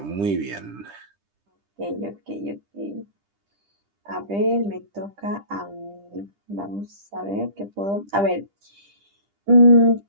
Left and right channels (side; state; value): left; late; 10 ms